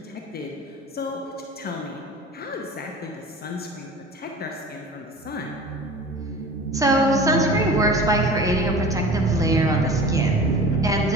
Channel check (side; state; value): both; normal; correlation 0.39